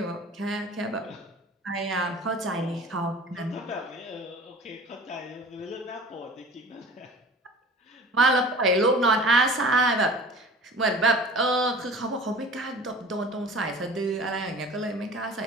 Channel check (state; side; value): normal; both; correlation 0.42